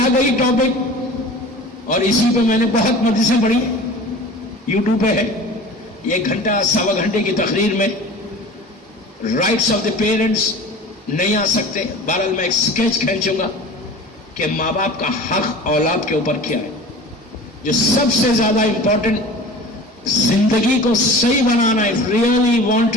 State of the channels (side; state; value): both; normal; correlation 0.39